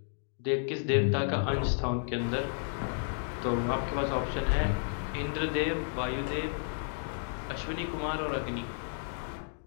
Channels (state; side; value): silent; right; digital silence